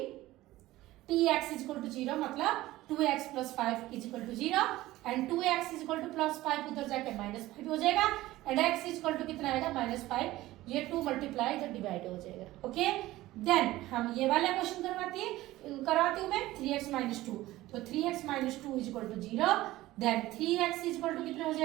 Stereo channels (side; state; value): left; quieter; 16.9 dB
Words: t x is equal to zero मतलब 2x plus 5 is equal to zero and 2x is equal to plus 5 उधर जाके -5 हो जाएगा and x is equal to कितना आएगा, -5। ये 2 मल्टीप्लाई इधर डिवाइड हो जाएगा, ओके। देन हम ये वाला क्वेश्चन करवाती हूँ मैं 3x माइनस 2। तो 3x minus 2 is equal to zero. Then 3x is equal to कितना हो